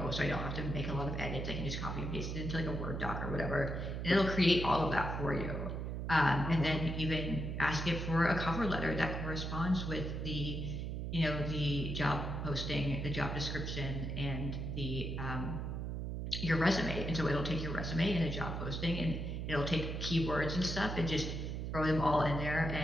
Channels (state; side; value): noise; right; hum, 3 dB below the sound